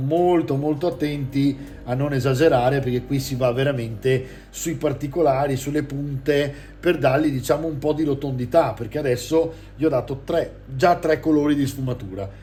molto attenti a non esagerare, perché qui si va veramente sui particolari, sulle punte, per dargli diciamo un po' di rotondità, perché adesso gli ho dato già tre colori di sfumatura.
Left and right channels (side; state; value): both; identical; correlation 1.00